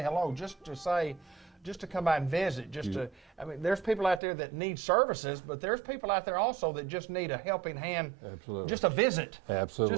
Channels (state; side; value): drops out; left; at 4.2 s